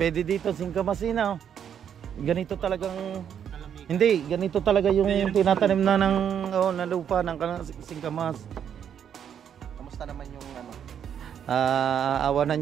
dito singkamas oh. Ganito talagang hindi, ganito talaga yung tinatanim na ng na lupa ng singkamas. Kamusta naman yung ano? Awa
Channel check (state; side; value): quieter; left; 8.7 dB